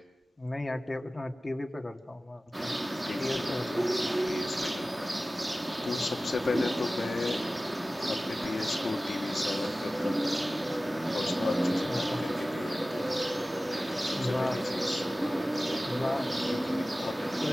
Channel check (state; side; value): normal; both; correlation 0.97